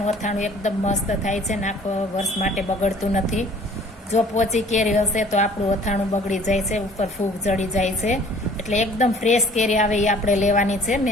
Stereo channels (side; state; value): both; normal; correlation 0.53